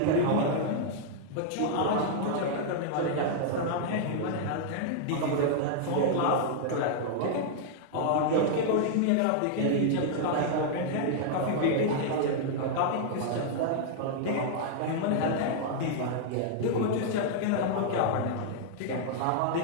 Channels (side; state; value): both; different; correlation -0.01